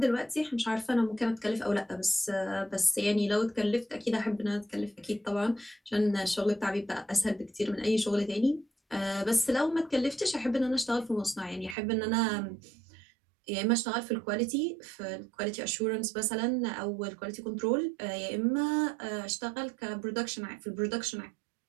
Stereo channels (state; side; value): drops out; left; at 11.8 s